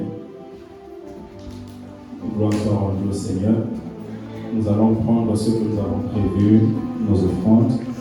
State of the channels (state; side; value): identical; both; correlation 1.00